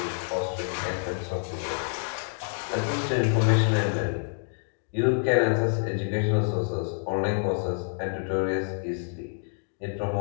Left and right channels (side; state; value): right; silent; digital silence